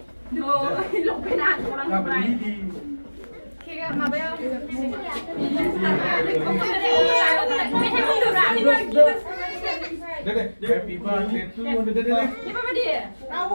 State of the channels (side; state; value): both; inverted; correlation -1.00